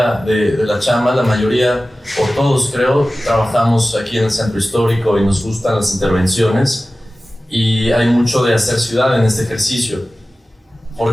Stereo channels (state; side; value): normal; both; correlation 0.96